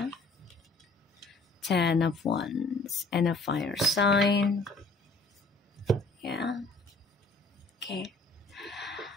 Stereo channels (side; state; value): right; quieter; 3.1 dB